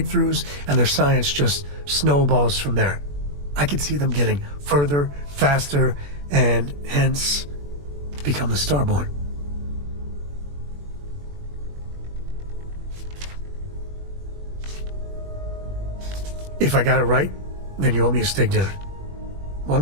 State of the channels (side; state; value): left; late; 21 ms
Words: and their science just snowballs from there. I could see them getting further, faster, and hence become the Starborn. If I got it right, then you owe me a steak dinner.